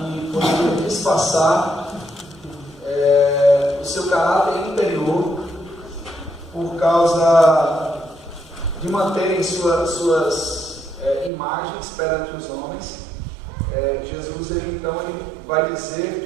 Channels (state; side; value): drops out; left; at 11.3 s